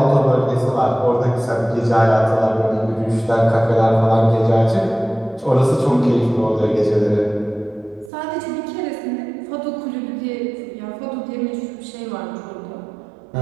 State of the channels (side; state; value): left; drops out; at 8.1 s